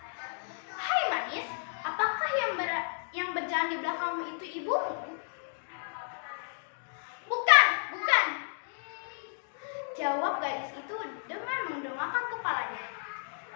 "Hai manis, apakah yang berjalan di belakangmu itu ibumu?" "Bukan, bukan," jawab gadis itu dengan mendongakkan kepalanya.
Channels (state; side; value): silent; right; digital silence